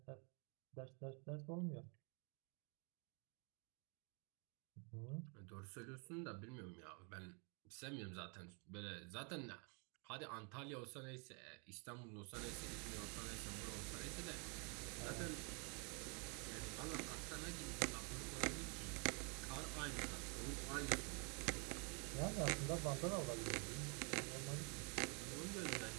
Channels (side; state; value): left; quieter; 36.1 dB